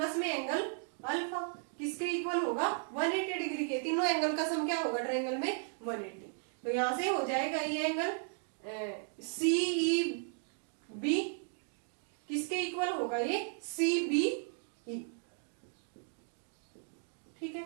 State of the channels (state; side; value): silent; left; 54 dB below the other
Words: में एंगल अल्फा किसके इक्वल होगा 180 डिग्री के। तीनों एंगल का सम क्या होगा ट्रायंगल में 180। तो यहां से हो जाएगा ये एंगल CEB किसके इक्वल होगा ये CBE, ठीक है।